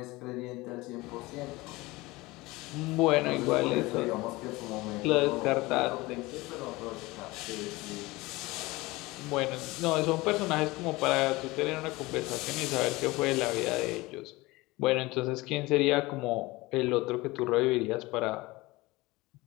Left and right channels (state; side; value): quieter; right; 21.3 dB